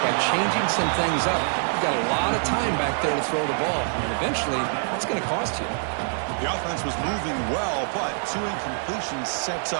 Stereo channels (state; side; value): silent; left; 62 dB below the other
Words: by changing some things up. You've got a lot of time back there to throw the ball. And eventually, that's going to cost you. The offense was moving well, but 2 incompletions sets